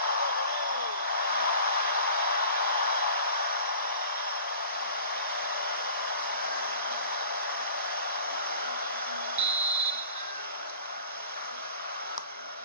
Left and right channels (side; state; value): both; inverted; correlation -0.44